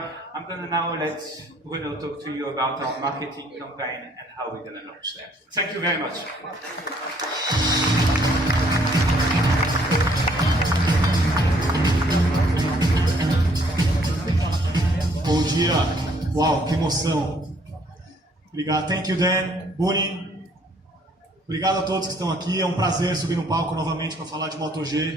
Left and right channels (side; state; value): both; normal; correlation 0.64